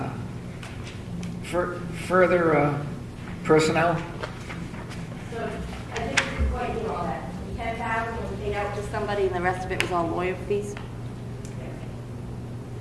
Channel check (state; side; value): identical; both; correlation 1.00